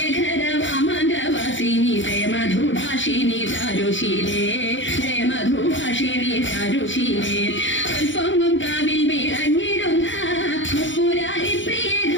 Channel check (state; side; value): late; right; 0.55 ms